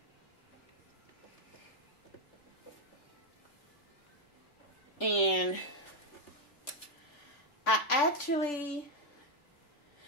And I actually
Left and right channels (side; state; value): right; late; 3.4 ms